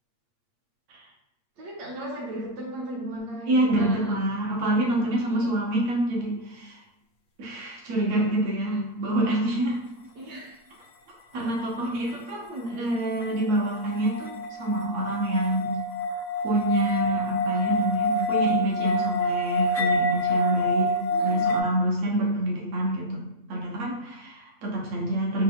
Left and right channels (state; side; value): late; left; 8.5 ms